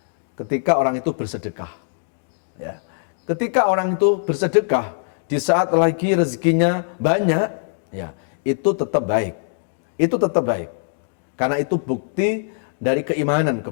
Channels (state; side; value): silent; right; digital silence